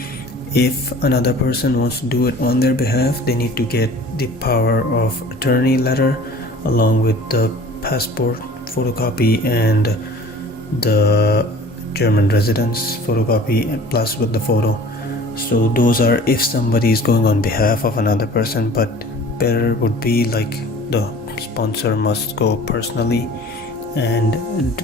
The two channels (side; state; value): both; normal; correlation 0.46